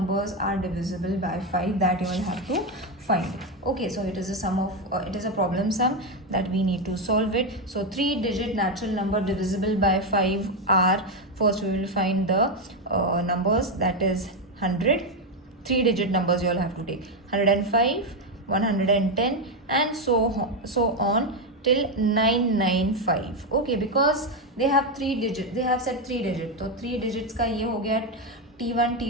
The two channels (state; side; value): normal; both; correlation 0.07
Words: are divisible by 5, that you will have to find. Okay, so it is a sum of it is a problem sum that we need to solve it. So 3-digit natural number divisible by 5 are, first we will find the numbers, that is 100. 3-digit numbers you all have to take 105, 110, and so on till 995. Okay, because they have 3 digits, they have said 3 digits, तो 3 digits का ये हो गया T1,